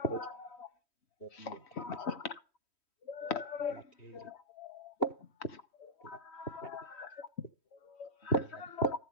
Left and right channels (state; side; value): late; right; 3.1 ms